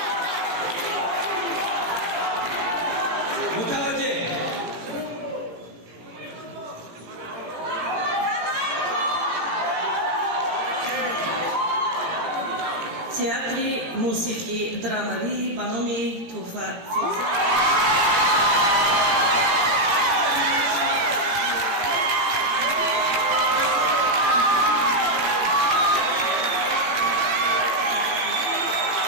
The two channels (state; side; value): late; left; 17 ms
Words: متوجه театри мусики драмавӣ ба номи Туҳфа Фирӯза.